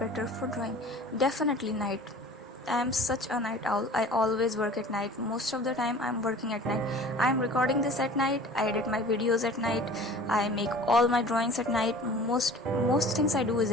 for drawing? Definitely night. I am such a night owl. I always work at night. Most of the time I'm working at night. I'm recording this at night. I edit my videos at night. I make all my drawings at night. Most things I do is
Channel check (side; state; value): both; normal; correlation 0.43